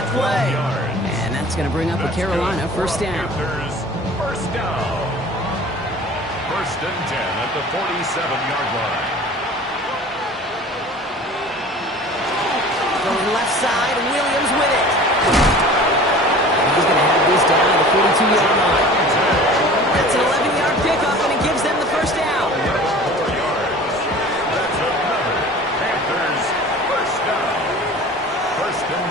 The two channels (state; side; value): normal; both; correlation 0.42